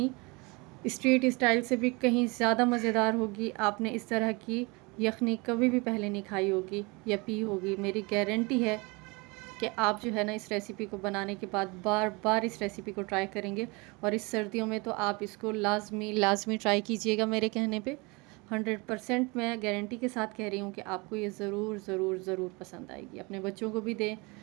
स्ट्रीट स्टाइल से भी कहीं ज़्यादा मज़ेदार होगी। आपने इस तरह की यखनी कभी भी पहले नहीं खाई होगी या पी होगी। मेरी गारंटी है कि आप जो है ना इस रेसिपी को बनाने के बाद बार बार इस रेसिपी को ट्राई करेंगे। और इस सर्दियों में तो आप इसको लाजमी ट्राई कीजिएगा। मेरे कहने पे 100% मैं गारंटी के साथ कह रही हूँ कि आपको ये ज़रूर ज़रूर ज़रूर पसंद आएगी। अपने बच्चों को भी दें,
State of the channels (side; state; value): left; quieter; 27.2 dB